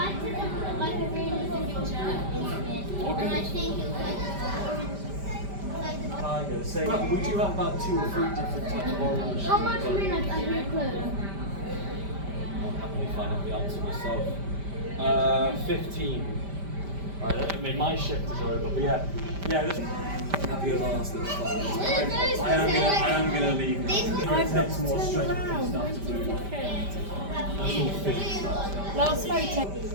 took like a really good picture Okay. and I think it was like Tiger. Say, we do have about 2 or 3 different types of orange. how much minutes are you closed? I'll happily find out the answer myself. 15. Right, I mean, my shift is over, but yeah. This have your last little fun. I am gonna leave now. It takes more strength and stuff to do. That's all physics stuff. Last photo.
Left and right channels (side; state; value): left; late; 5.1 ms